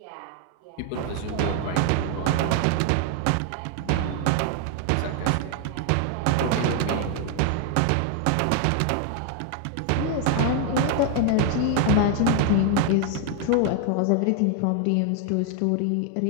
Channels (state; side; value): different; both; correlation 0.00